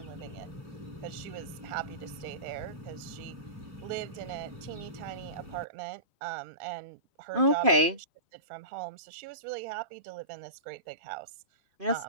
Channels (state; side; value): late; left; 2.5 ms